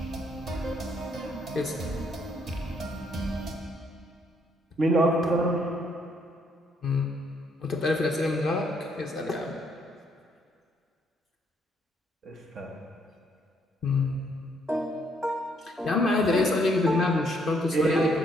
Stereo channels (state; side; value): normal; both; correlation 0.70